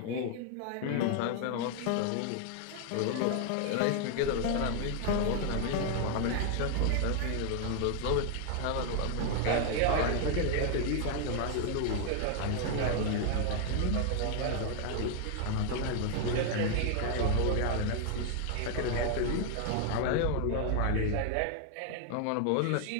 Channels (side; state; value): both; different; correlation 0.00